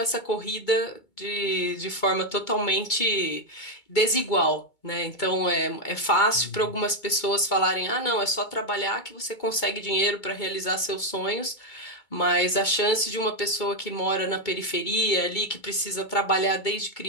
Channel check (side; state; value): right; late; 2.2 ms